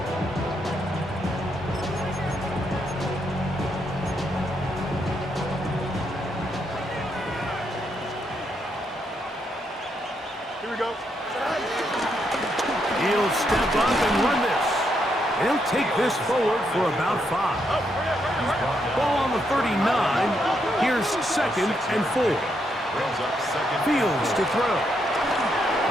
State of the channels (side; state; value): both; normal; correlation 0.78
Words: Here we go. He'll step up and run this. He'll take this forward for about 5. Ball on the 39. Here's 2nd and 4. Fields to throw.